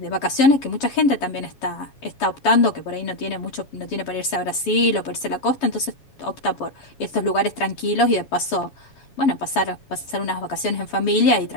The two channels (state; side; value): late; right; 7.3 ms